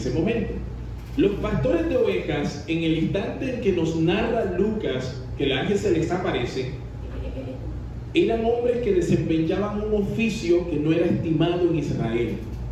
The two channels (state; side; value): identical; both; correlation 1.00